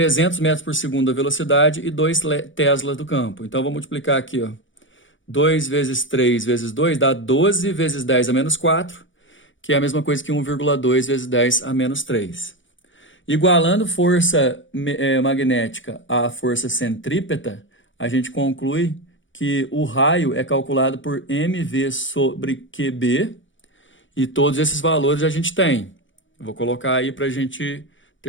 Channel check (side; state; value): right; late; 0.56 ms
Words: metros por segundo a velocidade e 2 teslas do campo. Então, vou multiplicar aqui, ó. 2 vezes 3 vezes 2 dá 12 vezes 10 a menos 4, que é a mesma coisa que 1,2 vezes 10 a menos 3. Igualando força magnética à força centrípeta, a gente conclui que o raio é calculado por mv sobre qb, e todos esses valores a gente tem. Eu vou colocar aí para a gente